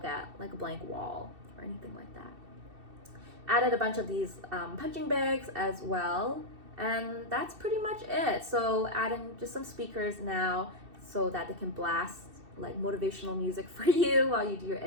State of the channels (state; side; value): late; left; 2.7 ms